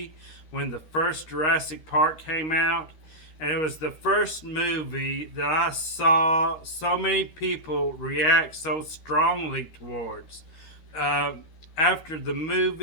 when the first Jurassic Park came out. And it was the first movie that I saw so many people react so strongly towards. Uh, After the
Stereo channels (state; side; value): late; right; 13 ms